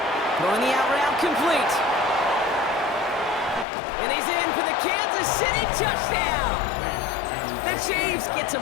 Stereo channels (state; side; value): drops out; right; at 3.7 s